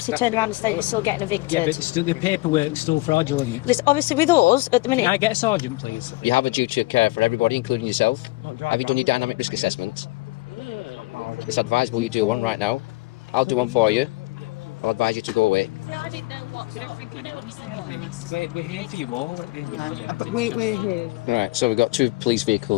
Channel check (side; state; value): right; quieter; 21.7 dB